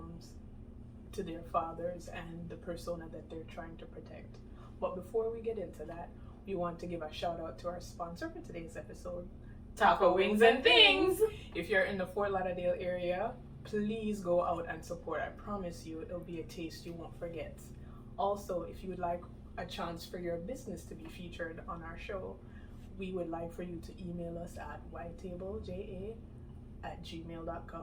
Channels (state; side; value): identical; both; correlation 1.00